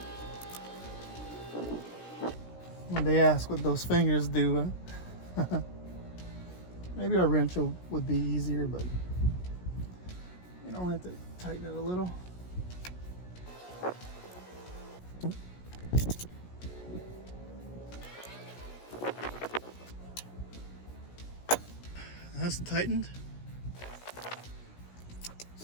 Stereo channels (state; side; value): late; right; 17 ms